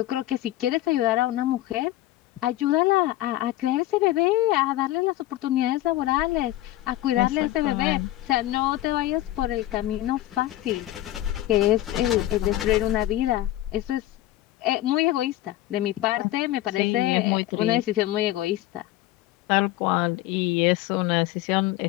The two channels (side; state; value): right; quieter; 15.4 dB